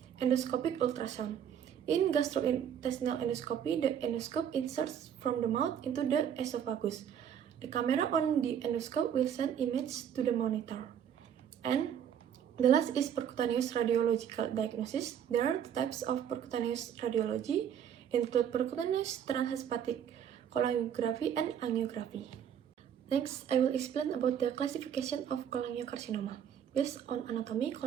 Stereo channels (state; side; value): quieter; left; 8.9 dB